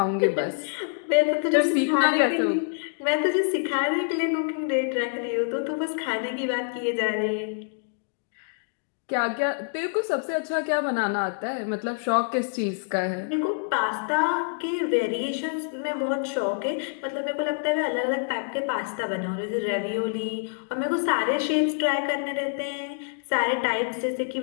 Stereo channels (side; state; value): right; silent; digital silence